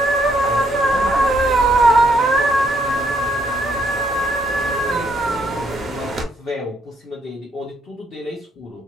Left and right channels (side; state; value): both; normal; correlation 0.72